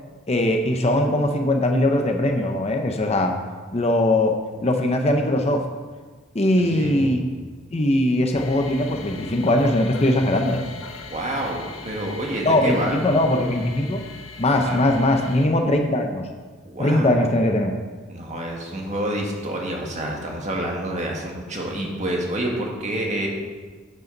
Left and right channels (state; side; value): normal; both; correlation 0.57